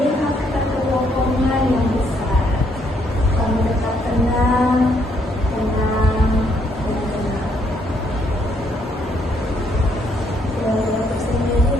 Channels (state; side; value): normal; both; correlation 0.71